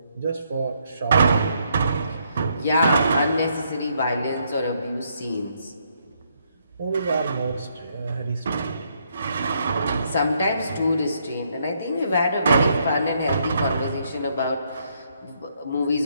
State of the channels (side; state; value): both; inverted; correlation -0.73